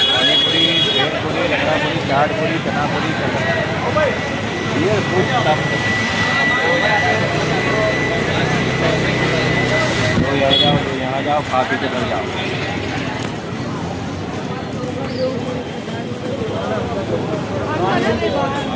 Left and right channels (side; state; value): both; identical; correlation 1.00